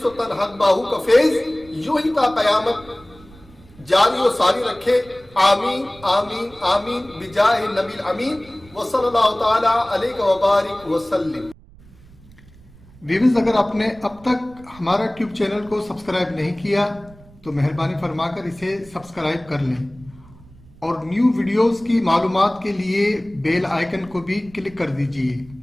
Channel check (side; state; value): right; noise; rumble, 24 dB below the sound